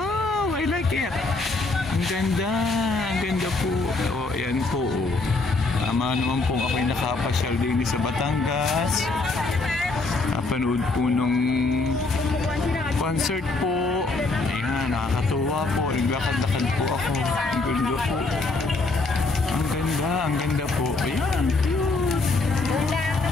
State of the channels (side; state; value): right; quieter; 3.5 dB